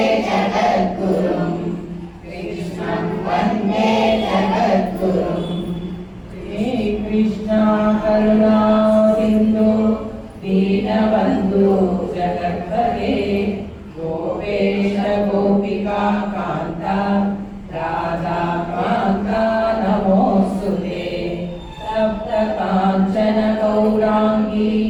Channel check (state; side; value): identical; both; correlation 1.00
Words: ಜಗದ್ಗುರುಂ. ಕೃಷ್ಣಂ ವಂದೇ ಜಗದ್ಗುರುಂ. ಹೇ ಕೃಷ್ಣ ಕರುಣಾ ಸಿಂಧು ದೀನಬಂಧು ಜಗತ್ಪತೆ ಗೋಪೇಶ ಗೋಪಿಕಾ ಕಾಂತ ರಾಧಾ ಕಾಂತ ನಮೋಸ್ತುತೆ. ಸಪ್ತ ಕಾಂಚನ ಗೌರಾಂಗಿ